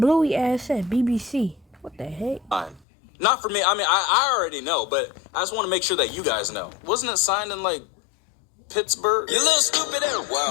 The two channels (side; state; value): right; drops out; at 2.9 s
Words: ass said BBC. What the heck? Fine. Not for me. I mean, I already know, but I just want to make sure that you guys know. Wasn't it signed in, like, Pittsburgh? You little stupid ass.